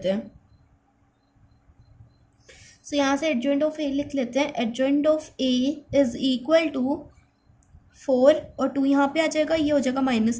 हैं। सो यहाँ से एडजॉइंट ऑफ ए लिख लेते हैं, एडजॉइंट ऑफ ए = 4 और 2 यहाँ पे आ जाएगा, ये हो जाएगा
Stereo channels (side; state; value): both; identical; correlation 1.00